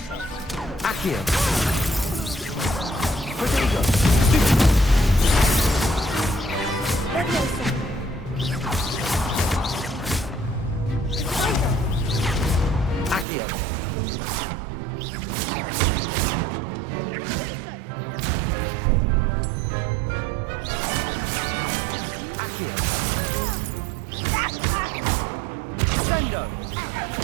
Accio. Protego. Stupid. Levioso. Accio. Accio. Sendo.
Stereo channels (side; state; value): left; drops out; at 13.2 s